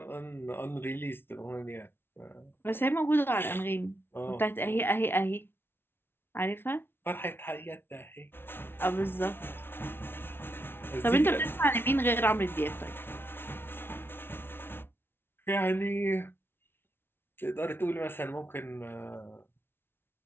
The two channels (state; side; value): late; right; 0.11 ms